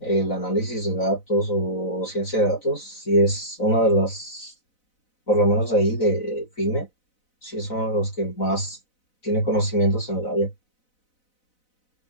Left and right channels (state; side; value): late; right; 4.0 ms